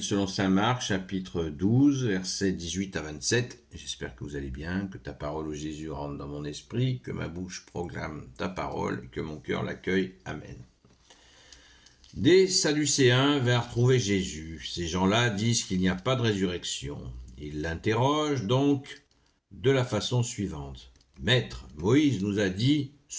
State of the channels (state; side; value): identical; both; correlation 1.00